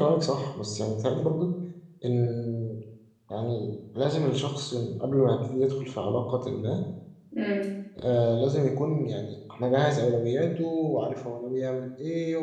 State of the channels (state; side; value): identical; both; correlation 1.00